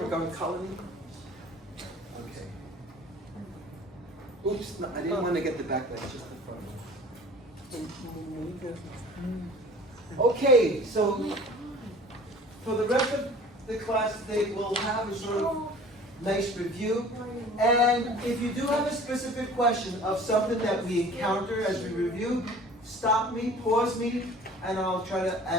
colony? Okay. Oops, no, I didn't want to get the back leg, just the front. Okay, so for the rest of the class today, we'll have a sort of nice review. And if you do have a specific question of something that we encounter as we review, stop me, pause me, and I'll try to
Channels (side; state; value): both; normal; correlation 0.46